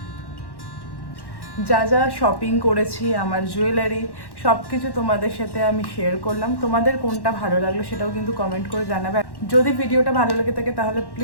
যা যা শপিং করেছি, আমার জুয়েলারি, সব কিছু তোমাদের সাথে আমি শেয়ার করলাম। তোমাদের কোনটা ভালো লাগলো সেটাও কিন্তু কমেন্ট করে জানাবে। যদি ভিডিওটা ভালো লেগে থাকে তাহলে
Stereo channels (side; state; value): right; late; 1.1 ms